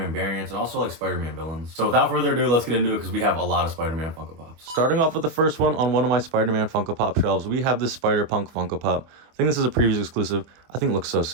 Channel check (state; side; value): late; left; 24 ms